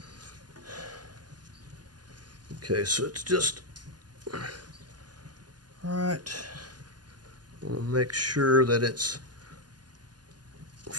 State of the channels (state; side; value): late; left; 0.70 ms